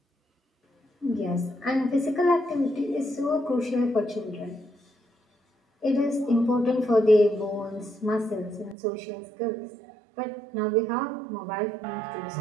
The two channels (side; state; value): left; drops out; at 8.8 s